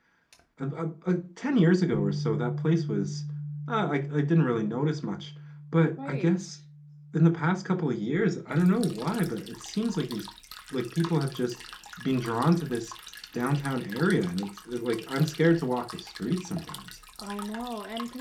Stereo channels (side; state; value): both; identical; correlation 1.00